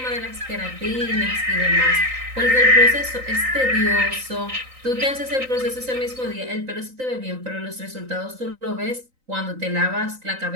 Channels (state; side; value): late; left; 3.9 ms